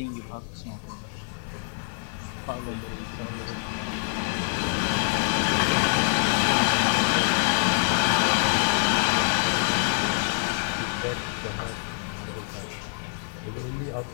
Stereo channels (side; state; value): right; silent; 61 dB below the other